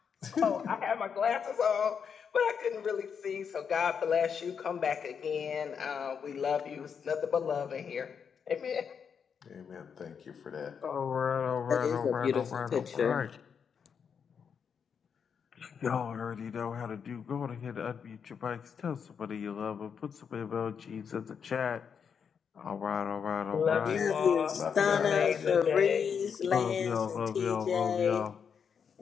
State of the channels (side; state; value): right; quieter; 6.9 dB